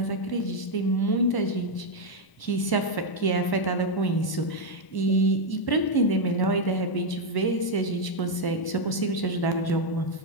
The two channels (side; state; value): right; late; 1.0 ms